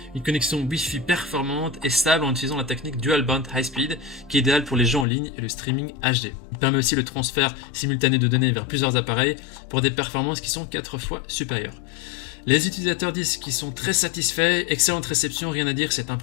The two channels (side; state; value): right; drops out; at 5.1 s